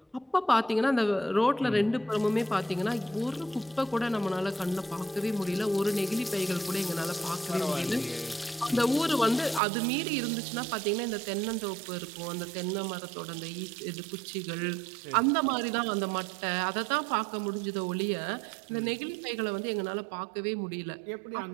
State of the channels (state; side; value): drops out; left; at 9.6 s